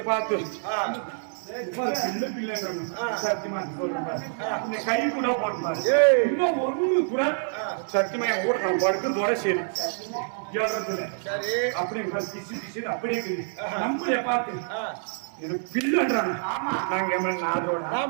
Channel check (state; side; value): silent; left; 60 dB below the other